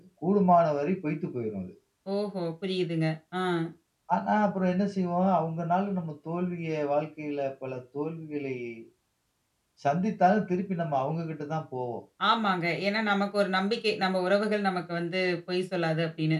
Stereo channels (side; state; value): both; identical; correlation 1.00